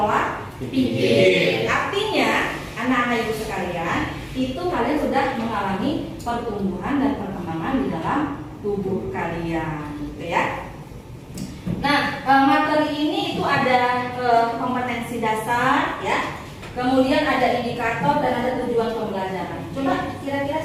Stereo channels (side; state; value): both; identical; correlation 1.00